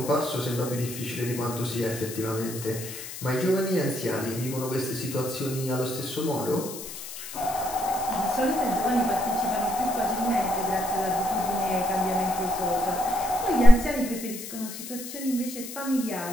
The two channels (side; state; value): left; noise; hiss, 10 dB below the sound